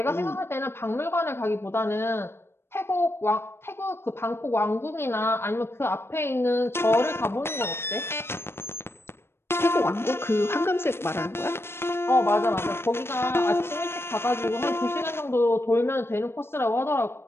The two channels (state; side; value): late; right; 0.12 ms